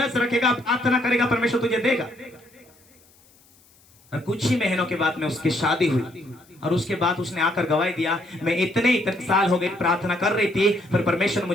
रखेगा, प्रार्थना करेगा, परमेश्वर तुझे देगा। और कुछ ही महीनों के बाद में उसकी शादी हुई और उसके बाद उसने आकर गवाही दिया, मैं इतने साल हो गए प्रार्थना कर रही थी पर परमेश्वर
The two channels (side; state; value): left; noise; hiss, 30 dB below the sound